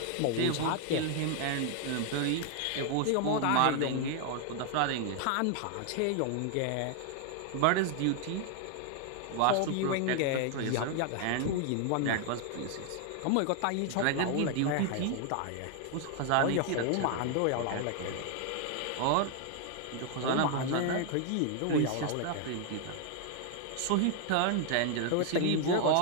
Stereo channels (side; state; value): both; different; correlation 0.00